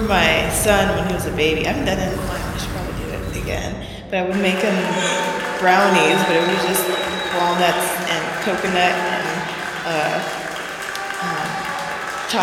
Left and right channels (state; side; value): identical; both; correlation 1.00